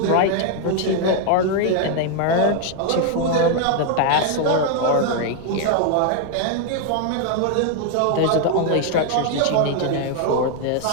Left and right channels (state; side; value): different; both; correlation 0.00